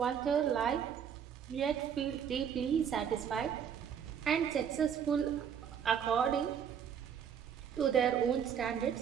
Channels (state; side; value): quieter; left; 8.1 dB